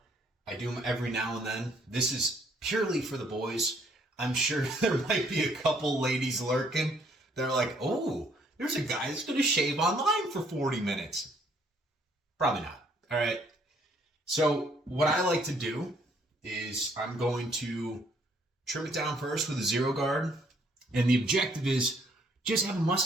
I do them every now and then. This is purely for the boys. I'm sure there might be a couple ladies lurking. They're like, oh, there's a guy that's going to shave online for 40 minutes. Probably not. All right. So what I like to do is I'm going to trim it down first with a zero guard. And the objective is just have a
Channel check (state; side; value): normal; both; correlation 0.66